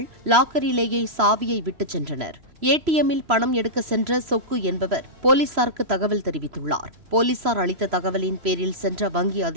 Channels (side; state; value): left; late; 3.0 ms